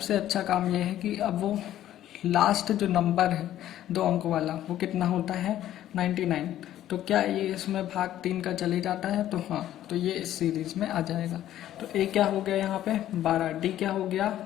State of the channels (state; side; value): quieter; right; 12.5 dB